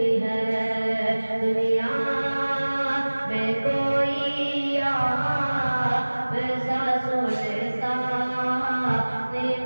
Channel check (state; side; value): inverted; both; correlation -1.00